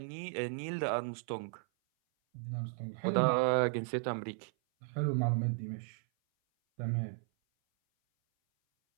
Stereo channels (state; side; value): silent; left; 54 dB below the other